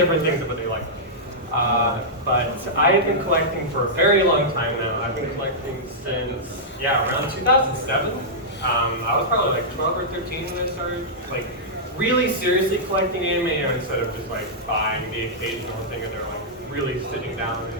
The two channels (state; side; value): normal; both; correlation -0.11